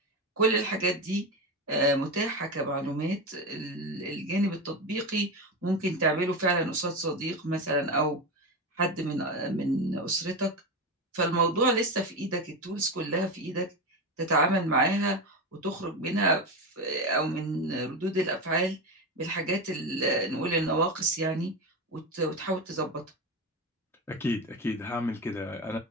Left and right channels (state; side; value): normal; both; correlation 0.18